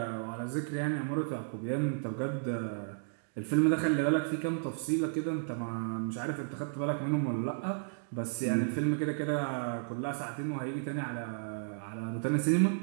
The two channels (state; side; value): silent; left; digital silence